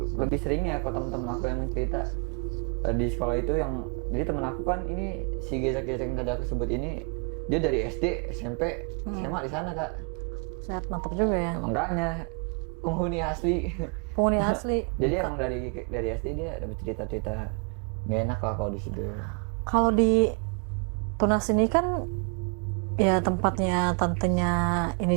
Lebih seringnya kalau teman-teman aku yang cerita di sekolah itu, yang jadi temen aku kan ini si Gezak-Gezak yang tadi aku sebut ini, dia dari SD, SMP, SMA di sana kak. Set mantap juga ya. Makanya penghuni asli. Penghuni asli. Jadi emang dari SD dia dapat cerita-cerita nggak enak lah kalau di situ. Kalau di Tunas ini kan ya tempatnya tantenya ini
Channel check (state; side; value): quieter; left; 36.0 dB